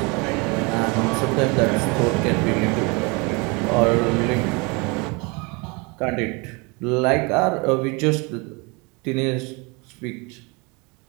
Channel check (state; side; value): quieter; left; 29.0 dB